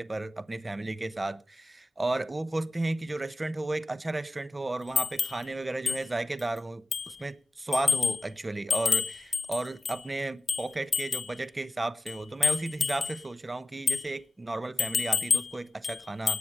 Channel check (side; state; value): both; normal; correlation 0.92